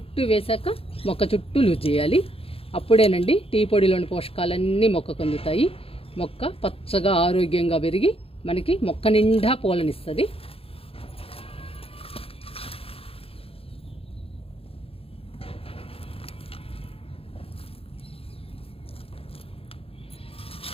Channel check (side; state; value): right; late; 0.27 ms